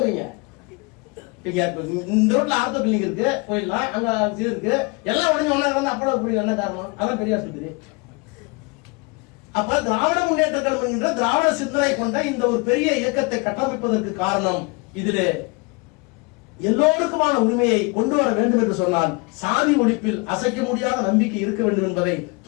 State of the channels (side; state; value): right; quieter; 28.9 dB